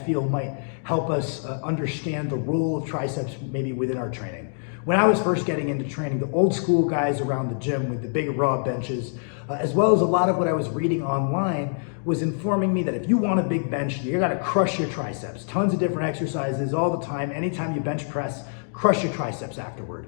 might help us understand the role of triceps maybe within our training. When I was first getting into training, the old school guys around the gym with the big raw benches, as well as a lot of what I was reading online, was informing me that if you want a big bench, you gotta crush your triceps. Tons of different exercises all the time. Anytime you bench press, crush your triceps afterward.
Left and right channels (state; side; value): silent; right; digital silence